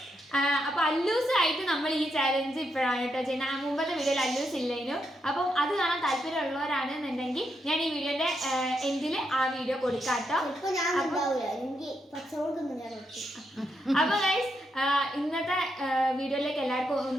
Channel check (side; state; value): both; normal; correlation 0.81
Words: അപ്പോൾ അല്ലൂസായിട്ട് നമ്മൾ ഈ ചാലഞ്ച് ഇപ്പോഴാണ് കേട്ടോ ചെയ്യുന്നത്. മുമ്പത്തെ വീഡിയോയിൽ അല്ലൂസ് ഇല്ലേനു. അപ്പം അത് കാണാൻ താല്പര്യമുള്ളവരാണെന്നുണ്ടെങ്കിൽ ഞാൻ ഈ വീഡിയോന്റെ എൻഡിൽ ആ വീഡിയോ കൊടുക്കാം കേട്ടോ. അപ്പൊ ഗൈസ് ഇന്നത്തെ വീഡിയോയിലേക്ക് എല്ലാവർക്കും